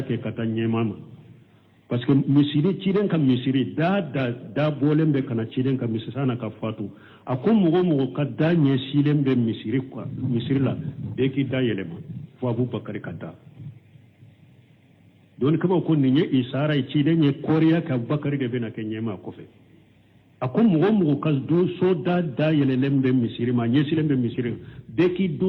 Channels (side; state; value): both; identical; correlation 1.00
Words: ke katanye mama parce que misiri ciden ka misiri da bolembe kana ciden ka misiri sana ka fatu akum mugo ka danye silembe misiri kwa misiri la be ki da yelema fo abubakar kata don kaba ko ni isara ci da ne koriya ka bakari da bena kenye ma kofe akon mugo kas do so da yele lembe misiri ma nye silembe misiri de ki